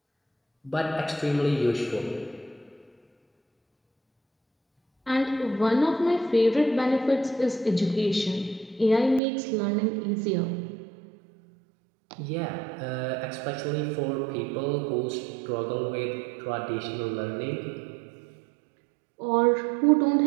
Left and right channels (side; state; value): left; drops out; at 9.2 s